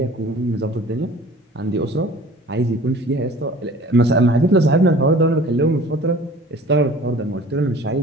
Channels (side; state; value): both; normal; correlation 0.46